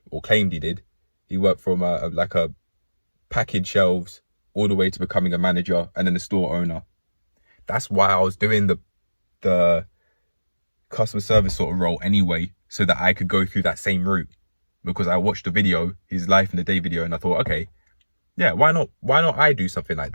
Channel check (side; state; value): both; inverted; correlation -1.00